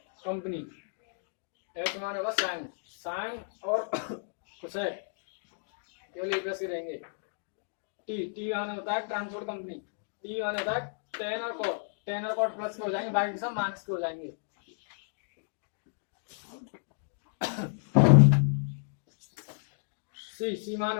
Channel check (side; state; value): right; silent; digital silence